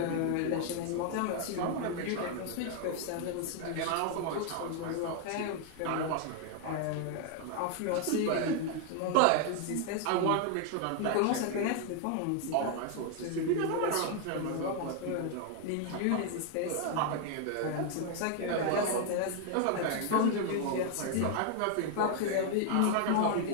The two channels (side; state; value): both; different; correlation 0.00